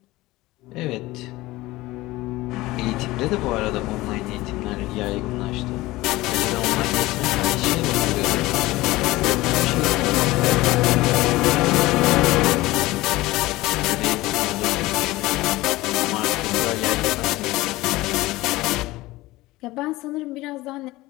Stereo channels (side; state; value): right; quieter; 19.0 dB